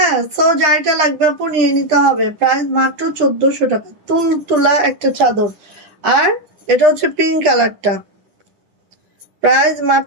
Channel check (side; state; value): left; late; 9.9 ms